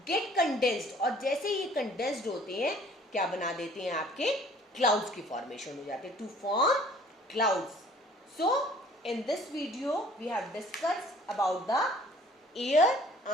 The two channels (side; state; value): both; normal; correlation 0.54